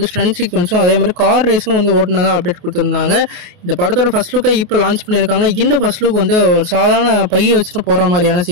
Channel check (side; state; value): left; late; 28 ms